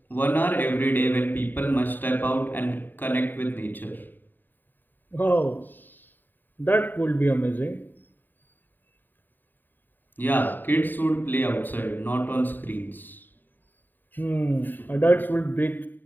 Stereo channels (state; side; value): late; right; 0.091 ms